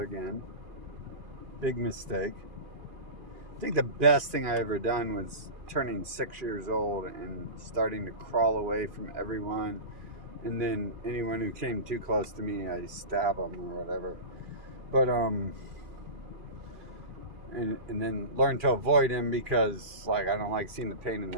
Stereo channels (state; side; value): late; left; 2.5 ms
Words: again. Big mistake. I think the best thing I ever done was turning 6 years old and starting to crawl away from everyone. And then anyone who came too close to me, I stab them or whatever. But, and then learn to avoid him because, like, I don't like seeing the pain in